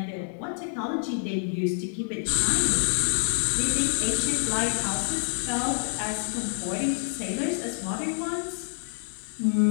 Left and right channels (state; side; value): silent; right; digital silence